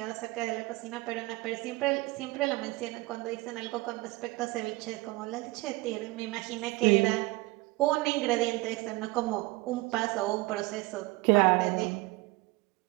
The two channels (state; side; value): quieter; left; 21.8 dB